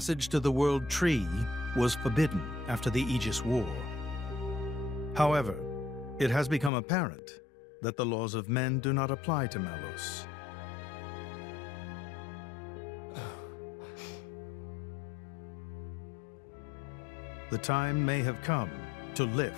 to the World Tree was forbidden after the Aegis War. However, it has become apparent that the laws of men do not apply to Malos. The time may have come to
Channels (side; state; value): right; drops out; at 6.7 s